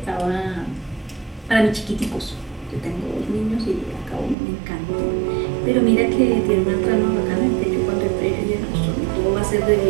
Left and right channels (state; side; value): drops out; left; at 4.4 s